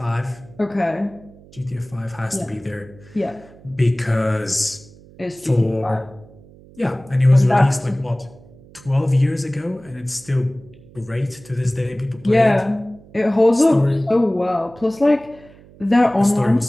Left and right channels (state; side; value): noise; right; hum, 23 dB below the sound